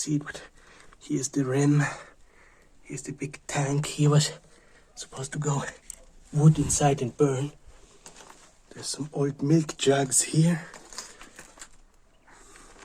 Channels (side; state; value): both; identical; correlation 1.00